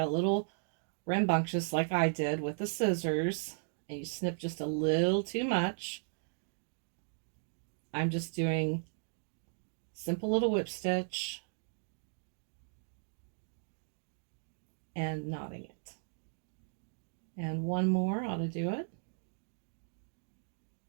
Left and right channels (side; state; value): left; silent; digital silence